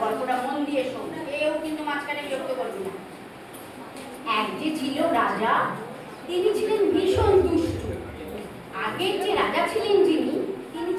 গল্পটা মন দিয়ে শোন, কেউ কিন্তু মাঝখানে বিরক্ত করবি না। এক যে ছিল রাজা, তিনি ছিলেন ভীষণ দুষ্টু। আগের যে রাজা ছিলেন যিনি, তিনি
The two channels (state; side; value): identical; both; correlation 1.00